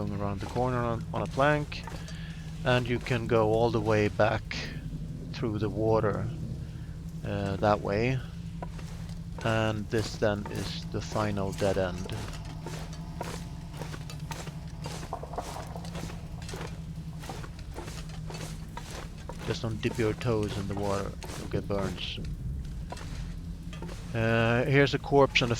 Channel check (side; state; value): both; identical; correlation 1.00